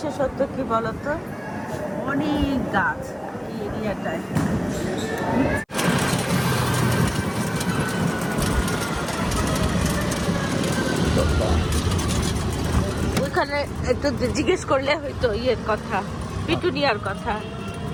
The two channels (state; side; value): identical; both; correlation 1.00